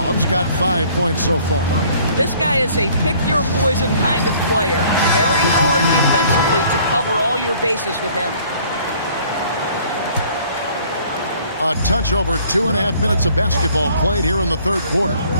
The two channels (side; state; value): both; inverted; correlation -0.56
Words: got 5 points so far. This guy is a pick-your-poison kind of player. Very hard defensively to cover all your bases with him. A touch over 2.5 minutes of basketball played here in the third quarter.